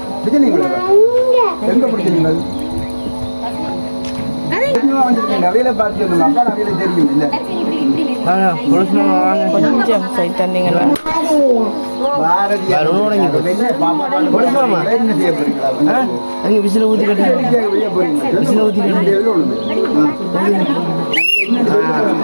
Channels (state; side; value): inverted; both; correlation -1.00